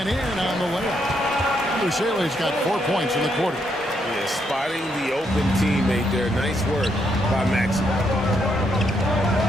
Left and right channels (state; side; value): normal; both; correlation 0.77